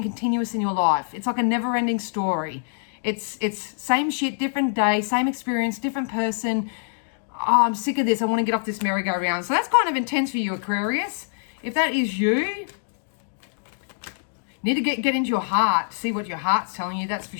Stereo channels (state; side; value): silent; right; digital silence